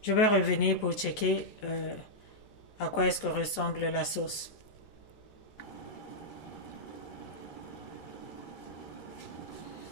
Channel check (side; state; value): right; late; 14 ms